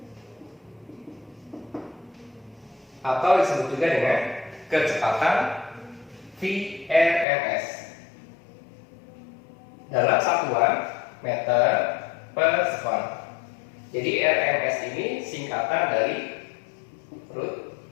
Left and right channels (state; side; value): drops out; right; at 7.2 s